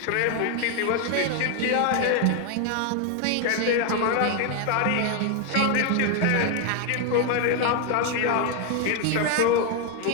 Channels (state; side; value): different; both; correlation 0.00